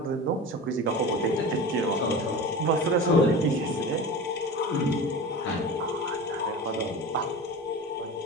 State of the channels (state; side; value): normal; both; correlation 0.31